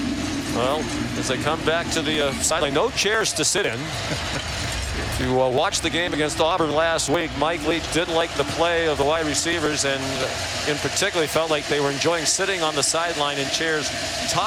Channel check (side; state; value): both; identical; correlation 1.00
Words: Well, as they come back to the sideline, no chairs to sit in. If you watched the game against Auburn last week, Mike Leach didn't like the play of the wide receivers, and in particular felt like they were enjoying sitting on the sideline in chairs,